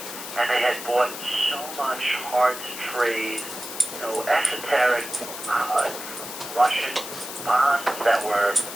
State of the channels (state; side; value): noise; left; hiss, 9 dB below the sound